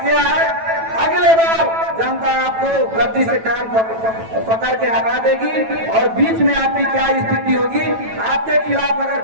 है। अगले बार जनता आपको गद्दी से कान पकड़ के हटा देगी और बीच में आपकी क्या स्थिति होगी। आपके खिलाफ अगर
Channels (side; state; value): left; late; 9.1 ms